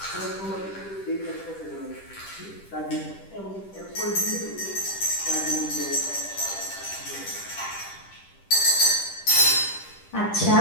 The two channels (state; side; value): late; right; 10 ms